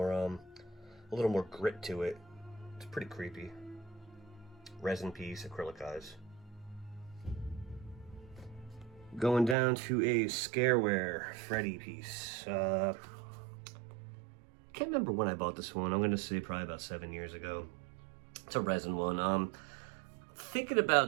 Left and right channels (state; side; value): drops out; left; at 9.6 s